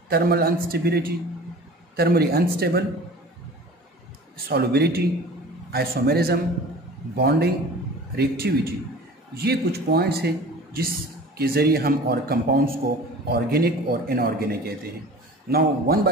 thermally unstable, solubility, isomerism, bonding, reactivity. ये कुछ पॉइंट्स हैं जिसके ज़रिए हम और कंपाउंड्स को ऑर्गेनिक और इनऑर्गेनिक कहते हैं. नाउ वन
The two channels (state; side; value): normal; both; correlation 0.41